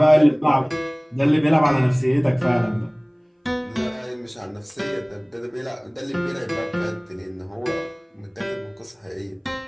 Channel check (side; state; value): both; identical; correlation 1.00